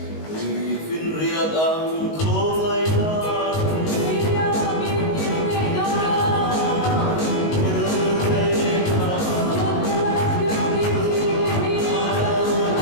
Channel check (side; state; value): right; late; 19 ms